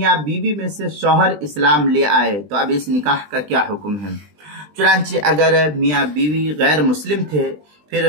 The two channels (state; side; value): late; left; 20 ms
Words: बीवी में से शौहर इस्लाम ले आए तो अब इस निकाह का क्या हुक्म है। चुनांचे अगर मियाँ बीवी गैर मुस्लिम थे